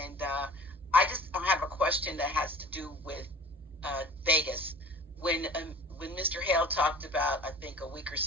I just have a question that has to do with Vegas. When Mr. Hale talked about, I think a week or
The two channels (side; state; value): both; normal; correlation 0.44